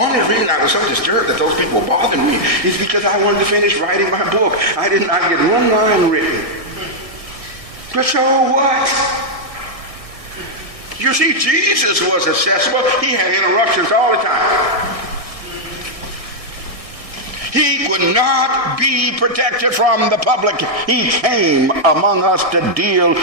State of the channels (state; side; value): late; left; 1.6 ms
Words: reason I was so disturbed that those people bothered me is because I wanted to finish writing my book. I did not get one line written. But so what? You see, Jesus was accessible. He had interruptions all the time. He would not be protected from the public. He came among us to deal